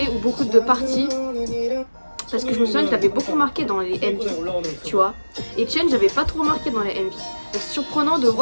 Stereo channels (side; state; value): both; inverted; correlation -1.00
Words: ou beaucoup de parties. Parce que je me souviens qu'il avait beaucoup marqué dans les MV, tu vois. Et Etienne, j'avais pas trop marqué dans les MV. Donc c'est surprenant de